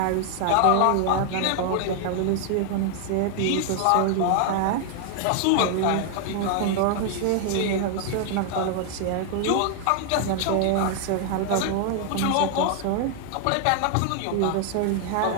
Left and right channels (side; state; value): both; different; correlation 0.00